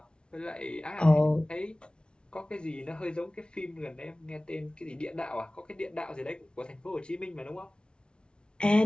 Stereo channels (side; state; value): right; late; 0.056 ms